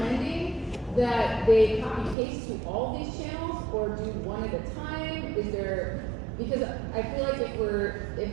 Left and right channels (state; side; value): drops out; left; at 2.1 s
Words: that they copy paste to all these channels or do one at a time? Because I feel like if